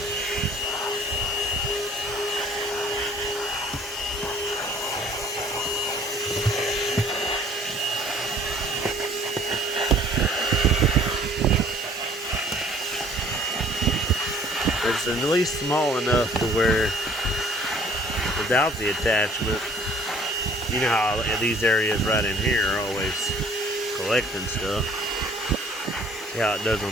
It's at least small enough to where without the attachment, you know how these areas right in here are always collecting stuff. See how it does on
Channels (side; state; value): both; normal; correlation 0.55